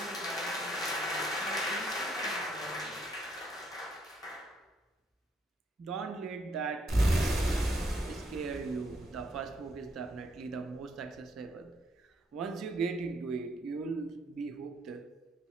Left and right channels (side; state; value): both; normal; correlation 0.72